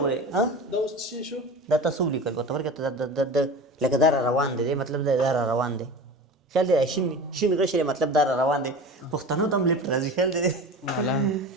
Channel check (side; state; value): both; normal; correlation 0.33